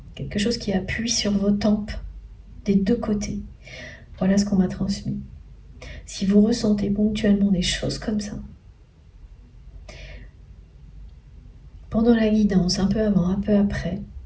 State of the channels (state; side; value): identical; both; correlation 1.00